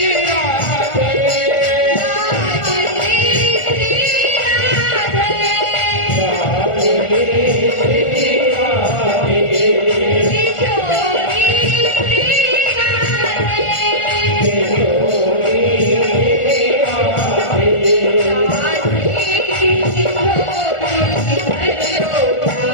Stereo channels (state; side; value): late; right; 1.4 ms